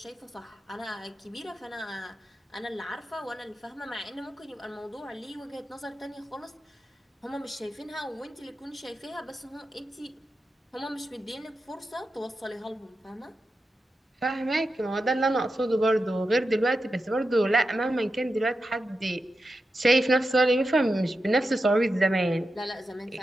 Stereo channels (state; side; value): normal; both; correlation 0.90